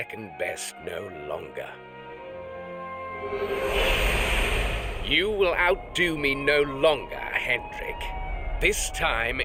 best no longer. You will outdo me no longer, Hendrik. This time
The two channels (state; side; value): identical; both; correlation 1.00